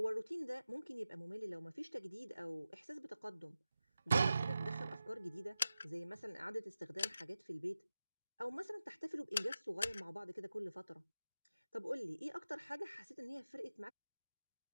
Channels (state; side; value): inverted; both; correlation -0.93